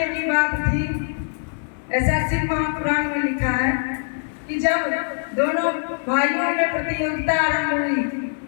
की बात थी। ऐसा शिव महापुराण में लिखा है कि जब दोनों भाइयों में प्रतियोगिता आरंभ हुई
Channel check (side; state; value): right; silent; digital silence